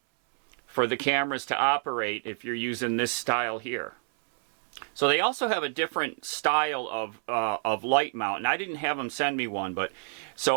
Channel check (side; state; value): left; silent; 59 dB below the other